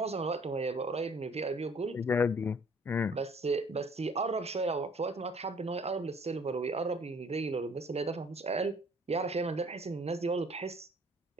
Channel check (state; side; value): normal; both; correlation 0.56